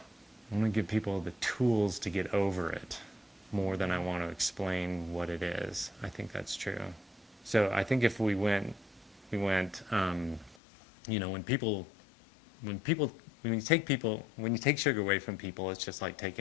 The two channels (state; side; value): drops out; right; at 10.6 s